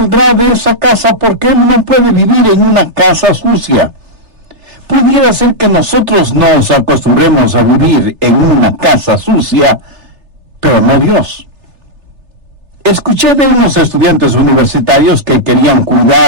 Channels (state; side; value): late; left; 3.3 ms